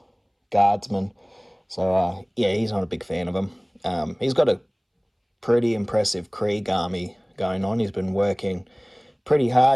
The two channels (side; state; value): both; identical; correlation 1.00